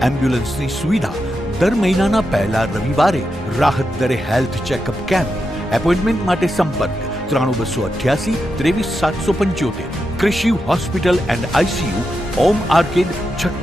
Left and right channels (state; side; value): normal; both; correlation 0.87